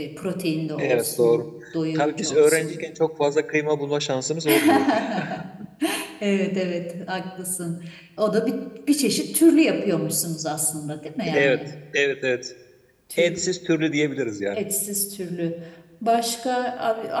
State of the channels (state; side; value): identical; both; correlation 1.00